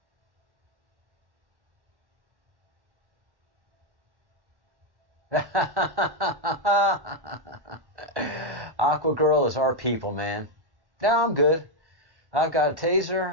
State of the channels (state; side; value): late; left; 1.1 ms